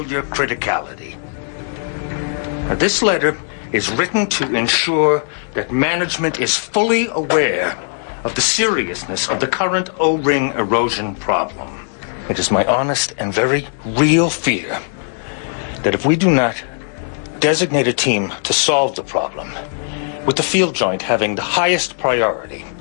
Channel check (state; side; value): silent; right; digital silence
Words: criticality. Now, this letter is written to ensure that management is fully aware of the seriousness of the current O-ring erosion problem. It is my honest and very real fear that if we do not designate a team to solve the problem, with the field joint having the highest priority,